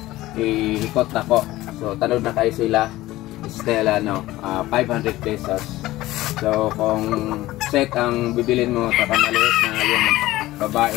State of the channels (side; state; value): right; quieter; 17.0 dB